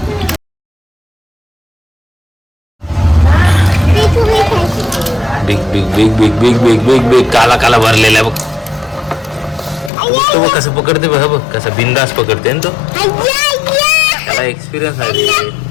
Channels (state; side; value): drops out; right; at 9.9 s